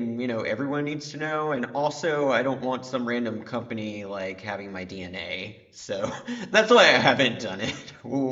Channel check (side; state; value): both; identical; correlation 1.00